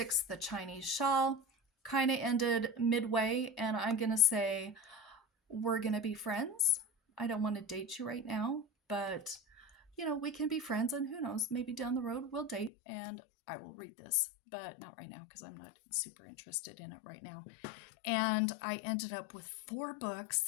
the Chinese Shawl. Kind of ended midway, and I'm going to say, we're going to be friends. I don't want to date you right now, but you know, we can be friends, and who knows, maybe down the road we'll date and I will read this, but not right now because I'm not super interested in it right now. And I ended up with 4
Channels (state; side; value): drops out; right; at 12.7 s